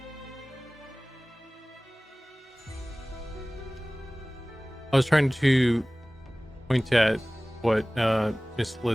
I was trying to point at what Miss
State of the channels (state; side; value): normal; both; correlation 0.98